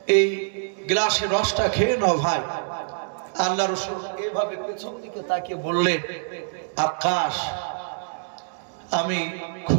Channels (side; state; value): left; silent; digital silence